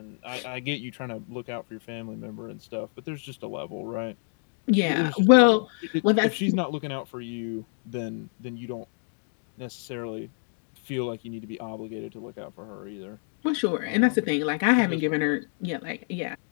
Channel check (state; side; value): silent; right; 57 dB below the other